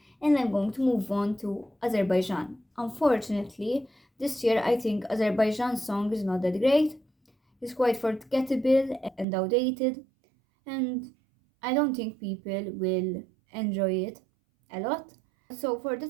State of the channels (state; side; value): drops out; left; at 9.2 s